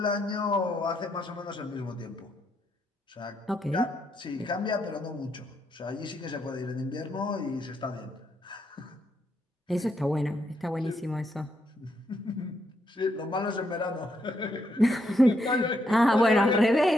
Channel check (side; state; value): both; normal; correlation 0.78